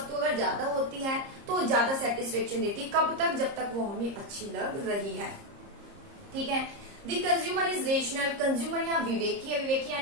अगर ज्यादा होती है तो ज्यादा सेटिस्फेक्शन देती है, कब तक, जब तक वो हमें अच्छी लग रही है। ठीक है, the consumer is rational. Consumer यहाँ विवेकी है, विवेकी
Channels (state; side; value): late; left; 30 ms